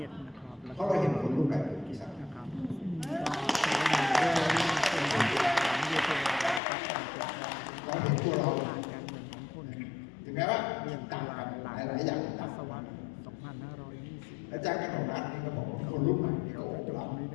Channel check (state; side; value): drops out; right; at 6.6 s